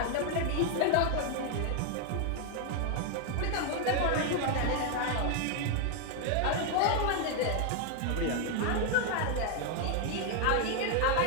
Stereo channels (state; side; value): different; both; correlation 0.00